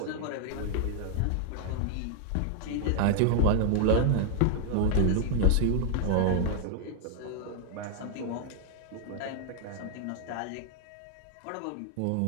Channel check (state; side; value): different; both; correlation 0.00